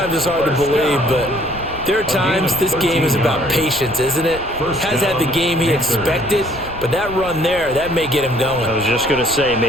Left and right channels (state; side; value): noise; left; rumble, 16 dB below the sound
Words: it's hard to believe, but there are times this game is about patience, isn't it? Has had the game he expected, but that run there, that may get him going. I was just going to say,